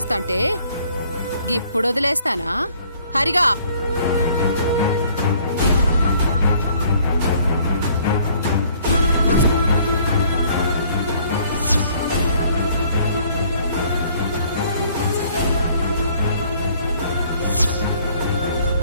గిప్పుడు వదిలేస్తానా? హరిగా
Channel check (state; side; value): inverted; both; correlation -0.59